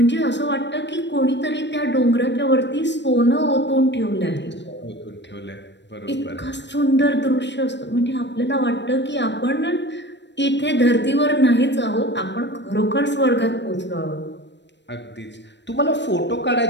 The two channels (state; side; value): late; right; 0.51 ms